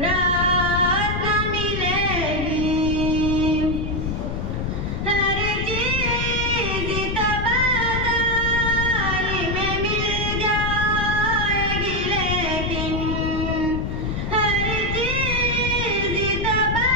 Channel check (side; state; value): left; noise; rumble, 2 dB below the sound